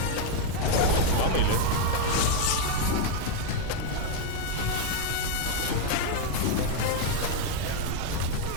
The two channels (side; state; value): both; different; correlation 0.00